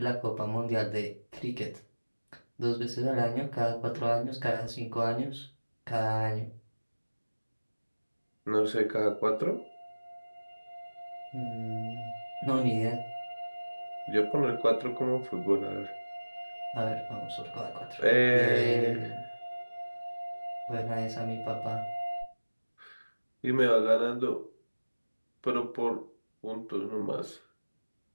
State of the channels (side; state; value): both; inverted; correlation -1.00